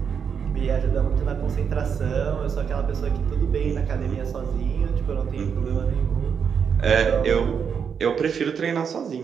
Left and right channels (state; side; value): quieter; left; 6.9 dB